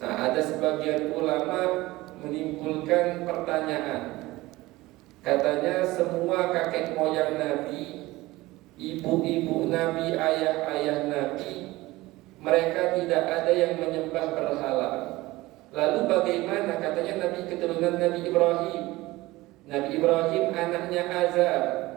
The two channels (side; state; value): left; quieter; 19.3 dB